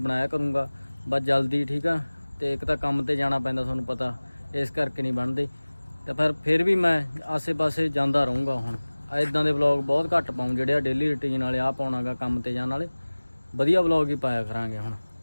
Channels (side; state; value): both; inverted; correlation -1.00